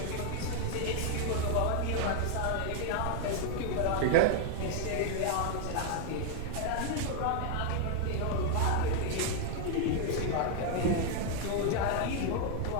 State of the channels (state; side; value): different; both; correlation 0.00